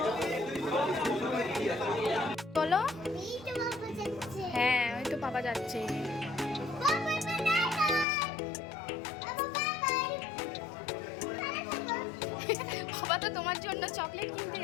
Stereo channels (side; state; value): right; drops out; at 8.1 s